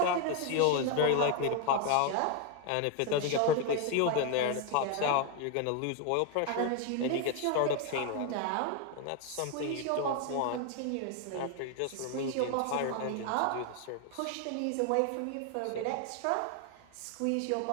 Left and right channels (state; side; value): different; both; correlation 0.01